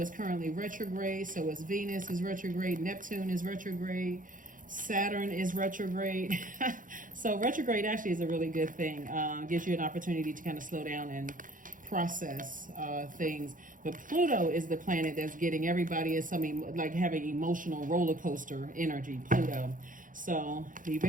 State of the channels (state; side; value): late; left; 0.39 ms